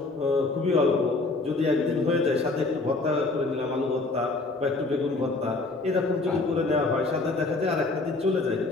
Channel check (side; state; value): right; quieter; 3.4 dB